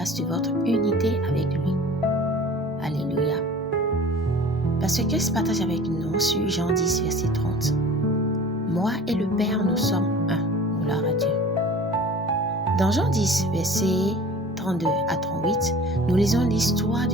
de votre unité avec lui ». Alléluia. Pasteur Christ partage avec nous sur Jean 10, verset 30. « Moi et le Père, nous sommes un. Gloire à Dieu. » Dans Jean 10, verset 32 à 38, nous lisons l'histoire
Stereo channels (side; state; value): both; normal; correlation 0.43